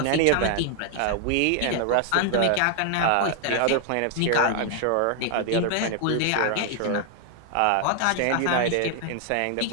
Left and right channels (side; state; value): both; different; correlation 0.00